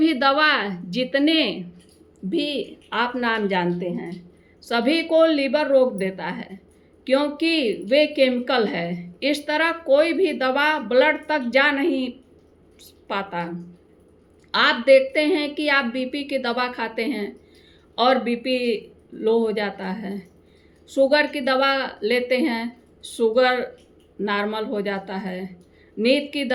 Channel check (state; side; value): identical; both; correlation 1.00